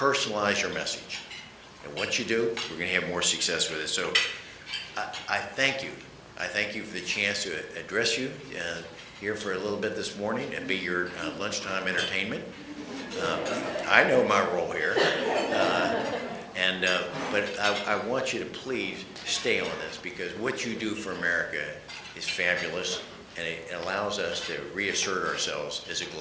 your message, and once you do, we're going to have more success with it. So, I thank you. I thank you for the chance to address you here for a little bit this morning and be your lunchtime entertainment. I know my role here, but I want you to please stay on this, because what you do for America is fabulous, and it allows us to reassert ourselves as a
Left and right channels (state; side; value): identical; both; correlation 1.00